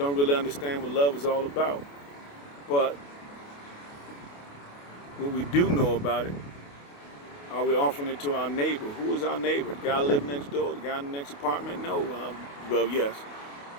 really understand what love is all about. But what we do know about it, are we offering it to our neighbor? Who is our neighbor? The guy living next door? The guy in the next apartment? No. Well, yes.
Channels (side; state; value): right; late; 28 ms